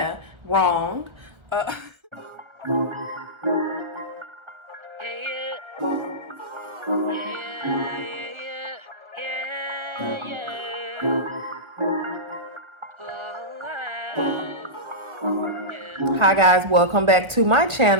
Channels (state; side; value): late; left; 1.4 ms